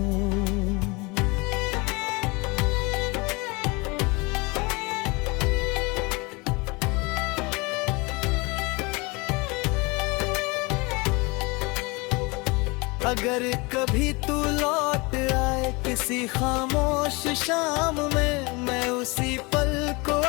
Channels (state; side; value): quieter; right; 26.6 dB